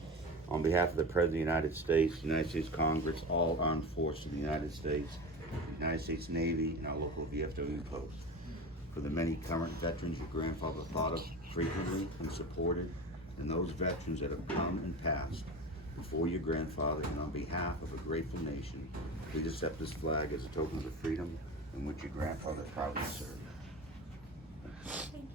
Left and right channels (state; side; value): normal; both; correlation 0.29